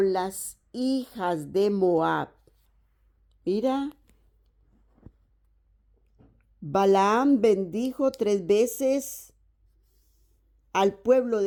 las hijas de Moab. Mira, Balaam bendijo 3 veces al pueblo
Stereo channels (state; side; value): identical; both; correlation 1.00